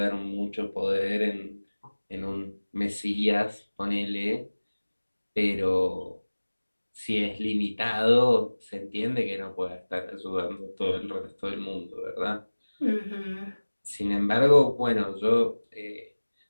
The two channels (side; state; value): both; inverted; correlation -1.00